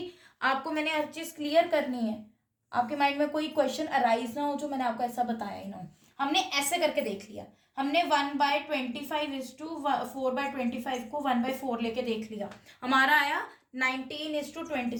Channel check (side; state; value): both; identical; correlation 1.00